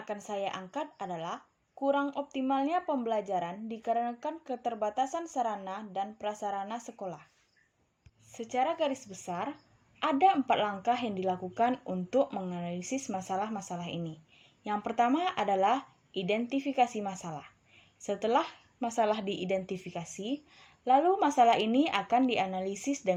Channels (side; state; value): both; identical; correlation 1.00